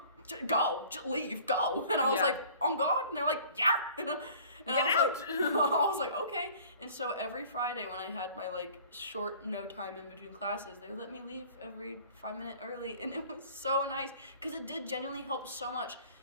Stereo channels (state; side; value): inverted; both; correlation -0.49